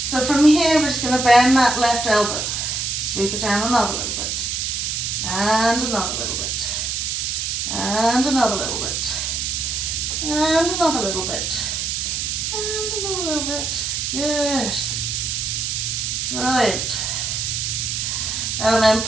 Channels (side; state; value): right; noise; hiss, 1 dB below the sound